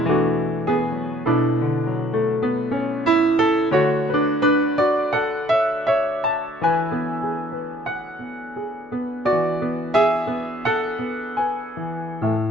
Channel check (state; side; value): normal; both; correlation 0.61